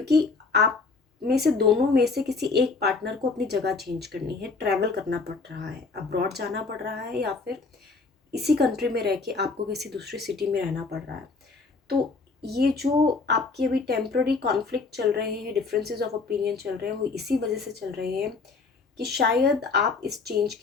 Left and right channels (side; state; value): right; quieter; 4.2 dB